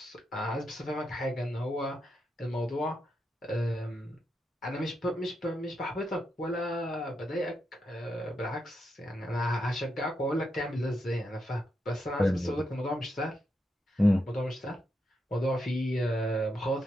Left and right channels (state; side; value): normal; both; correlation 0.83